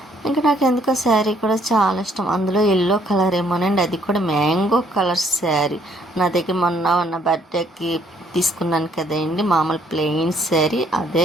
ఇంకా నాకు ఎందుకో శారీ కూడా చాలా ఇష్టం. అందులో ఎల్లో కలర్ ఏమోనండి, అది కూడా మ్యాంగో కలర్ శారీ. నా దగ్గర మొన్న బర్త్డేకి తీసుకున్నాను కదండి మామూలు ప్లెయిన్ శారీ,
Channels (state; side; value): normal; both; correlation 0.66